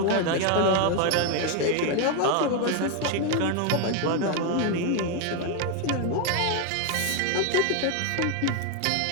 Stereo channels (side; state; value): both; different; correlation 0.01